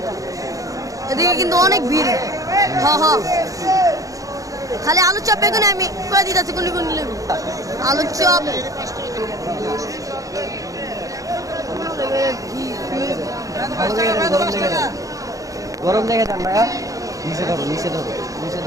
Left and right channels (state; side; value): late; left; 0.17 ms